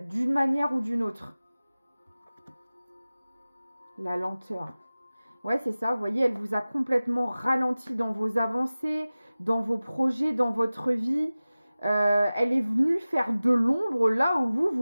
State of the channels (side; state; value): both; inverted; correlation -0.97